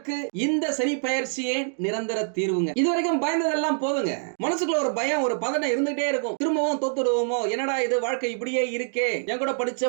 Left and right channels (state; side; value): silent; left; digital silence